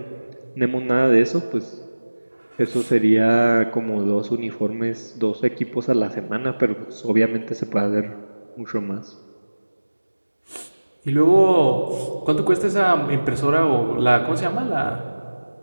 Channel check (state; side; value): inverted; both; correlation -1.00